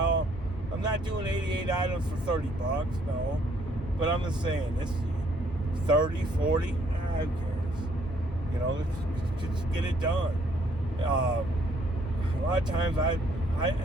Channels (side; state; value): both; normal; correlation 0.66